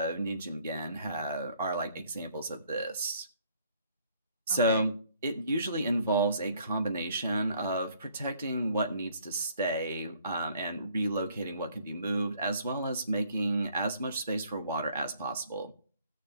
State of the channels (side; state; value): both; inverted; correlation -0.62